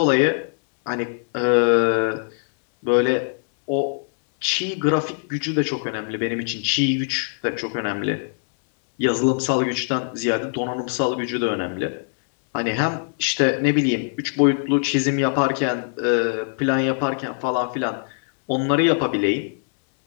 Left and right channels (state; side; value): silent; right; 63 dB below the other